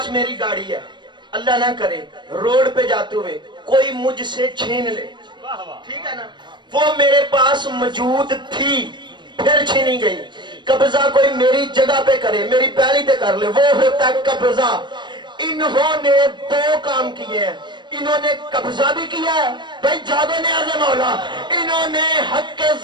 میری گاڑی ہے، اللہ نہ کرے روڈ پہ جاتے ہوئے کوئی مجھ سے چھین لے، ٹھیک ہے نا، وہ میرے پاس موجود تھی پھر چھینی گئی، قبضہ کوئی میری جگہ پہ کرے، میری پیلی پہ کر لے، وہ ہوتا ہے قبضہ۔ انہوں نے 2 کام کیے ہیں، انہوں نے قبضہ بھی کیا ہے، بھائی جاگو نیاز مولا، انہوں نے حق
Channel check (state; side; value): late; left; 0.22 ms